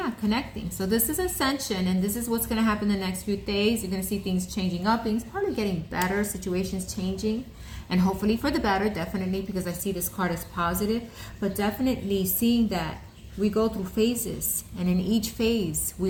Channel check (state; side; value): identical; both; correlation 1.00